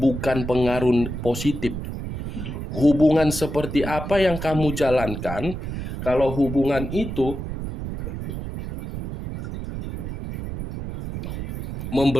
pengaruh positif. Hubungan seperti apa yang kamu jalankan kalau hubungan itu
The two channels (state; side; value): noise; right; rumble, 6 dB below the sound